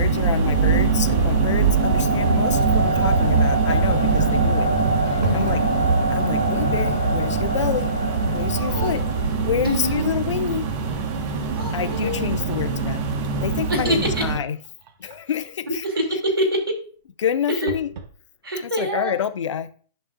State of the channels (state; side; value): inverted; both; correlation -0.43